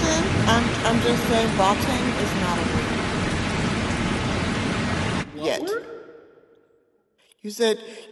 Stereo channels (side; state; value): both; identical; correlation 1.00